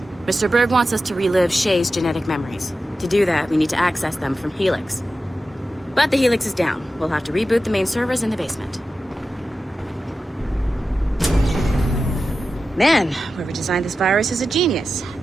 Mr. Berg wants us to relive Shay's genetic memories. To do that, we need to access them from Helix. But the Helix is down. We'll have to reboot the main servers in the basement. Man, whoever designed this virus is a genius.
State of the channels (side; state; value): both; normal; correlation 0.92